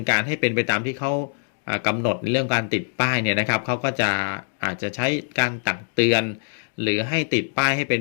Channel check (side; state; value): right; silent; digital silence